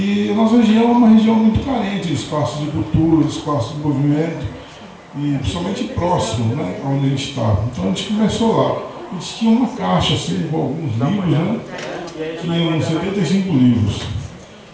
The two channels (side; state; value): both; identical; correlation 1.00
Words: a nossa região é uma região muito carente de espaços de cultura, de espaços de movimento, e principalmente próximo, né, onde a gente está. Então a gente começou lá. A gente tinha uma caixa assim, com alguns livros, né? Tinha 75 livros.